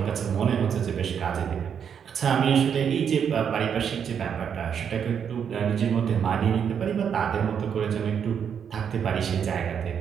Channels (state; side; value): quieter; left; 7.7 dB